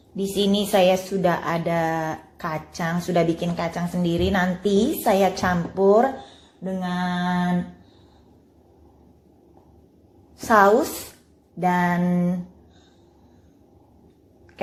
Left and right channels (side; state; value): both; identical; correlation 1.00